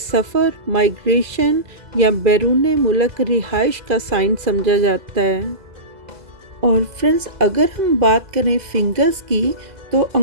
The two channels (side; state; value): left; late; 2.0 ms